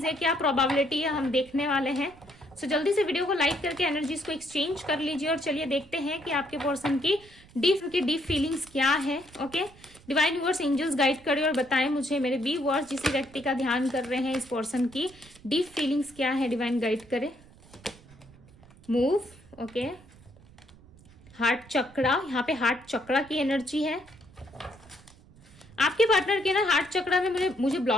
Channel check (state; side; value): noise; right; rumble, 24 dB below the sound